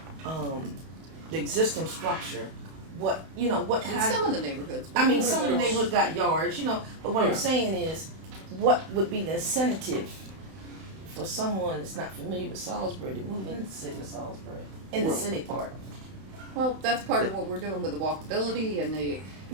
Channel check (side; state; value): left; late; 31 ms